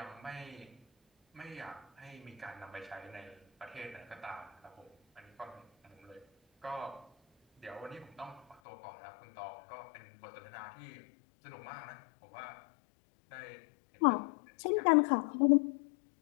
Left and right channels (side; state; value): right; drops out; at 8.6 s